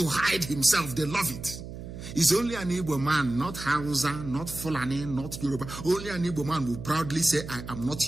hide himself. They love it. It's only an Igbo man, not Hausa, not Fulani, not Yoruba. Only an Igbo man will proudly say, I am not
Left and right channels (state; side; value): noise; right; hum, 11 dB below the sound